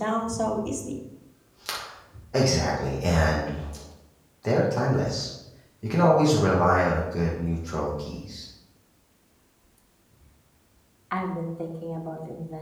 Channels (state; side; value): identical; both; correlation 1.00